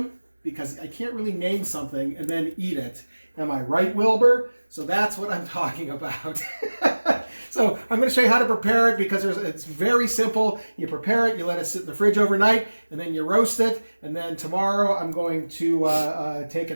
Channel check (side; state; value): both; inverted; correlation -1.00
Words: because I can't really name something and then eat it. Am I right, Wilbur? So that's what I'm talking about. So I'm going to show you how to prepare it because it's very simple. You prepare it, you let it sit in the fridge overnight, and then you roast it. And then tomorrow I'm going to take it